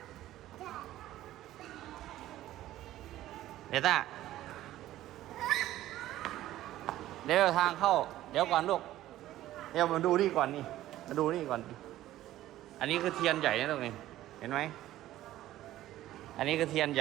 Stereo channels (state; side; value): quieter; left; 14.3 dB